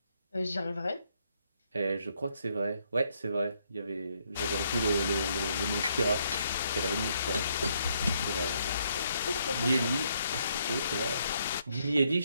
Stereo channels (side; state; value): both; inverted; correlation -0.73